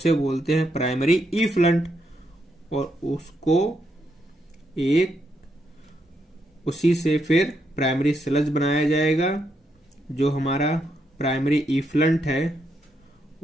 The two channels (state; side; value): normal; both; correlation 0.79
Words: बोलते हैं प्राइमरी इफ्लंट। और उसको एक उसी से फिर प्राइमरी स्लज बनाया जाएगा। जो हमारा प्राइमरी इफ्लंट है